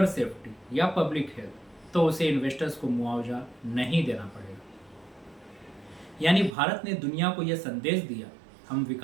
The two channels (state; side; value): drops out; left; at 6.6 s